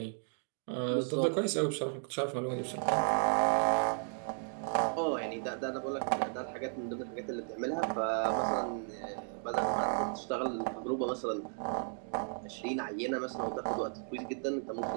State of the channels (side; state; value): left; silent; 55 dB below the other